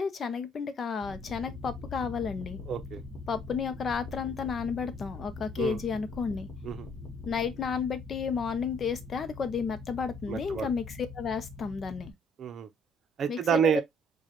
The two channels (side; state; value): both; normal; correlation 0.63